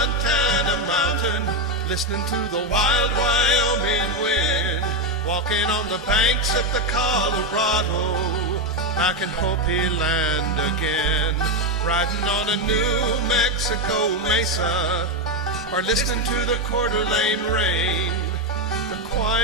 mountain, listening to the wild Wyoming wind, walking on the banks of the Colorado, back in Hopi land again, riding on a New Mexico mesa, or listening to the Coeur d'Alene rain. The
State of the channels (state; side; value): normal; both; correlation 0.07